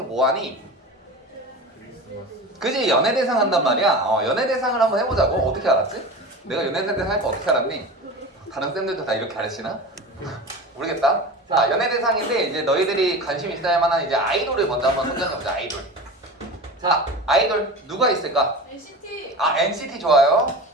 뭐 하니? 그지? 연예대상 한단 말이야. 연예대상을 한번 해보자고. 어떻게 알았지? 내가 연예대상 할 거 어떻게 알았니? 다른 쌤들도 다 이렇게 가르치나? 모르겠다. 자, 연예대상인데 이제 너희들이 관심 있어야 할 만한 이제 아이돌을 먼저 한번 선정해보자. 아이돌. 자, 아이돌 누가 있을까? NCT. NCT 좋아요.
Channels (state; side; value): normal; both; correlation 0.31